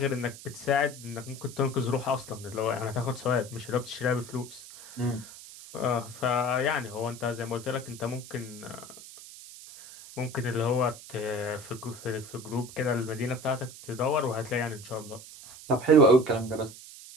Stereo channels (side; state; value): right; noise; hiss, 16 dB below the sound